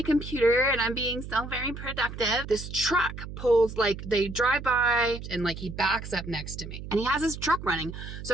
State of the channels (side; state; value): right; noise; hum, 10 dB below the sound